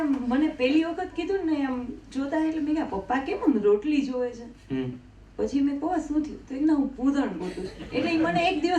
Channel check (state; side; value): identical; both; correlation 1.00